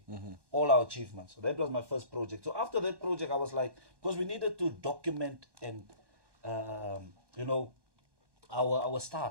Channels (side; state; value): left; late; 1.1 ms